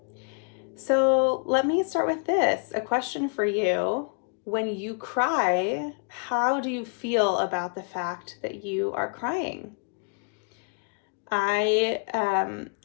So let me start with this, a question for you. When you cry, how do you feel about the fact that you are crying? I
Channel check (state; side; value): quieter; right; 37.1 dB